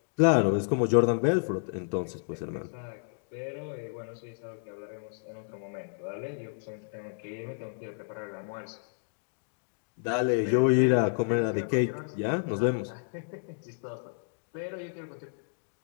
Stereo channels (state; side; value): silent; right; digital silence